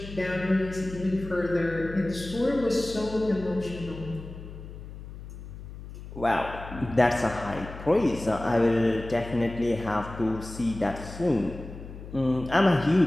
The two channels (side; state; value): left; noise; hum, 13 dB below the sound